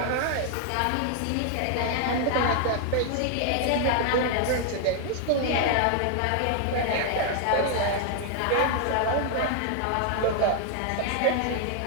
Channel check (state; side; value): different; both; correlation 0.00